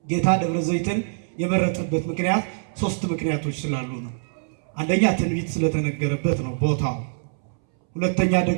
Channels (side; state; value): left; silent; 63 dB below the other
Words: ጌታ ደብረ ዘይትን የመረጠበት ምክንያት 3 ምክንያቶች ስላሉ ነው። አንደኛ ትንቢት ስለተነገረበት ነው ቦታው። ሁለተኛ